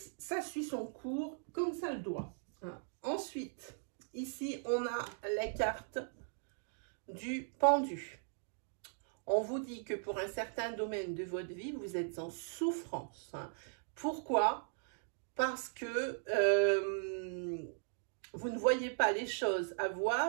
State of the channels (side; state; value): left; silent; digital silence